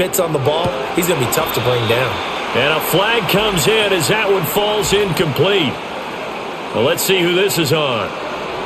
on the ball, he's going to be tough to bring down. And a flag comes in as that one falls incomplete. Well, let's see who this is on.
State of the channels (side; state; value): both; identical; correlation 1.00